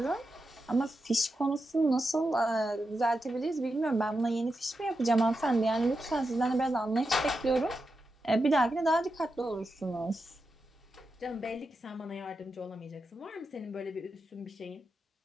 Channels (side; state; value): both; normal; correlation 0.88